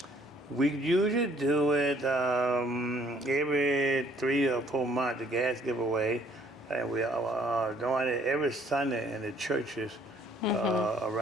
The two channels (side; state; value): both; normal; correlation 0.62